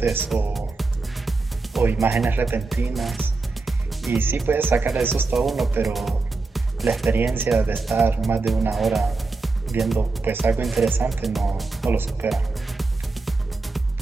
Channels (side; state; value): left; quieter; 3.7 dB